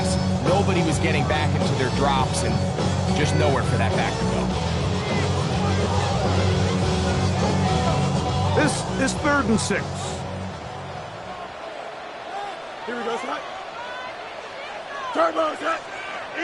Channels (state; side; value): identical; both; correlation 1.00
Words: Nobody was getting back into their drops, and just nowhere for that back to go. This is third and 6. Here we go, Scott. Turbo, Scott.